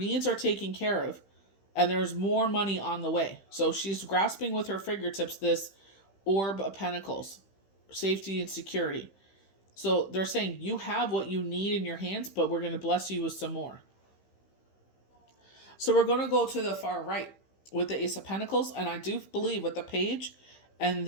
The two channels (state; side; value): late; right; 15 ms